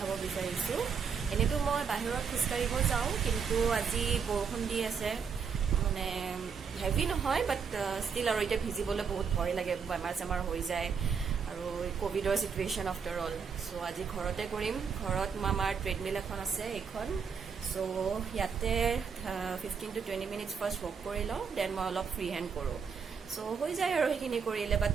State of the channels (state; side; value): quieter; left; 6.2 dB